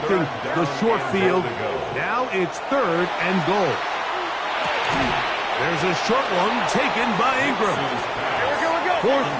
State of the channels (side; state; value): both; identical; correlation 1.00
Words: the short field. Now it's third and goal. There's a short one taken by Ingram. Fourth